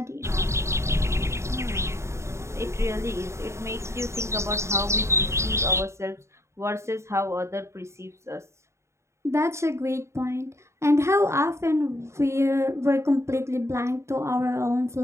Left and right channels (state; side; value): late; left; 0.14 ms